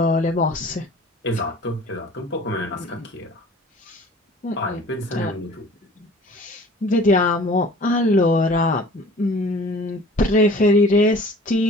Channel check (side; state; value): both; normal; correlation 0.47